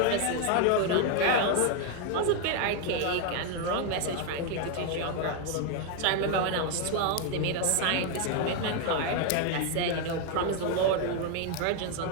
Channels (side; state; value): both; different; correlation 0.01